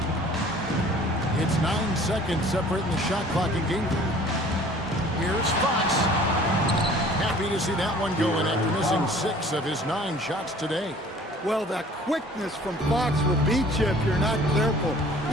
It's 9 seconds separating the shot clock in game 3. Here's Fox. Happy to see that one going after missing 6 of his 9 shots today. Well, that quickness from Fox will beat you if you're not careful.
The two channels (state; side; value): normal; both; correlation 0.50